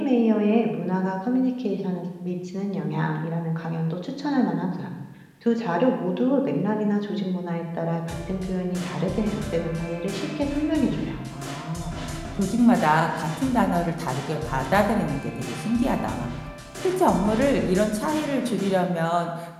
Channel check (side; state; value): both; identical; correlation 1.00